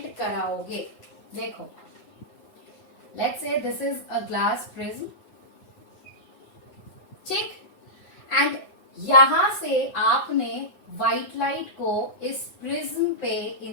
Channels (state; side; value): late; right; 8.0 ms